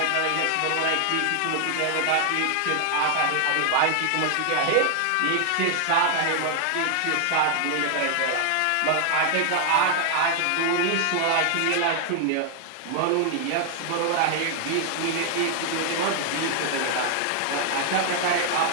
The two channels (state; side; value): different; both; correlation 0.00